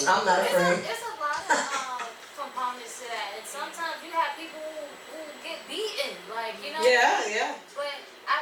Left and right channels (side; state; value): both; identical; correlation 1.00